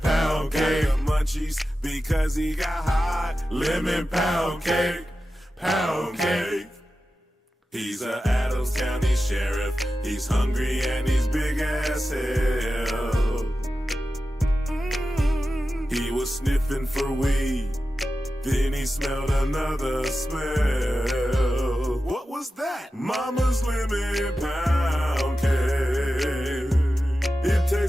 cake. Got the munchies because he got hot. Lemon pound cake. Pound cake. He's a Adams County Sheriff. He's hungry and he's big as hell. He was sniffing for weed. Then he smelled another smell. What was that? Mama's lemon pound cake. It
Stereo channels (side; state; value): both; normal; correlation 0.93